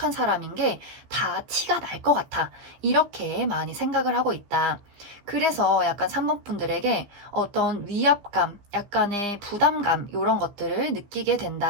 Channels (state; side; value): late; left; 15 ms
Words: 사람인 게 다 티가 날 것 같아. 이렇게 많이 생각을 하고 있다. 그래서 약간 3번 분들에게 어떤 위압감, 약간의 부담감, 이런 것들을 느끼게